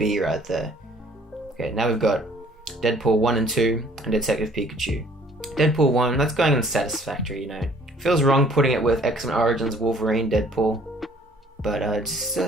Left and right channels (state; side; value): normal; both; correlation 0.57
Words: right there. Okay, now we've got Deadpool 1 and 2 and Detective Pikachu. Deadpool 1, that's going in satisfactory, Feels wrong putting it with X-Men Origins Wolverine Deadpool. But just